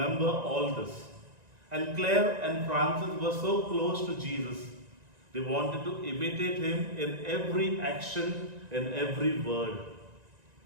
all this. And Clare and Francis were so close to Jesus. They wanted to imitate him in every action, in every word.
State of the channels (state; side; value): late; left; 1.9 ms